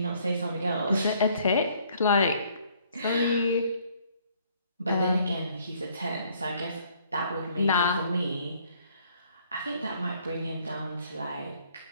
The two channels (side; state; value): both; inverted; correlation -0.63